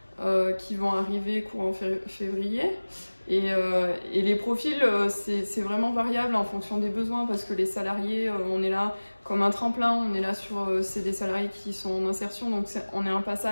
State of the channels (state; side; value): inverted; both; correlation -1.00